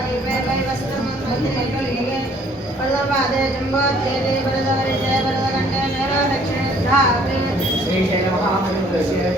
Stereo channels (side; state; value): both; normal; correlation 0.60